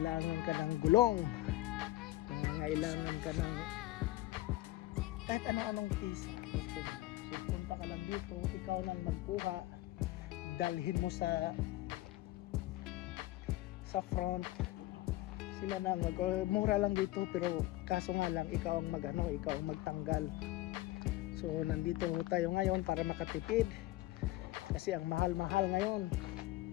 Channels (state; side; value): quieter; right; 17.0 dB